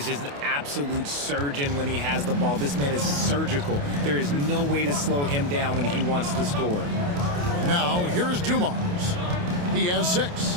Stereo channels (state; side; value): late; left; 28 ms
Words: just an absolute surgeon when he has the ball. This man is surgical. There is no way to slow him down when he wants to score. Now, here's Dumars. He has